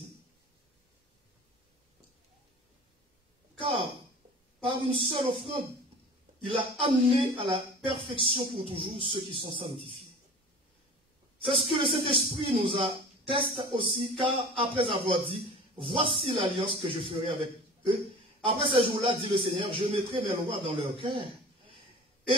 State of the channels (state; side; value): normal; both; correlation 0.40